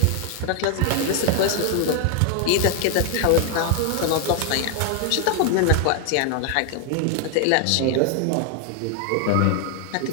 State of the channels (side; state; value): both; different; correlation 0.00